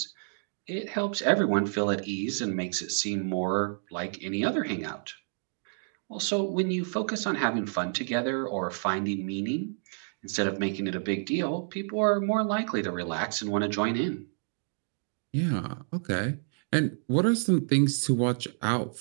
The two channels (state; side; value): silent; left; digital silence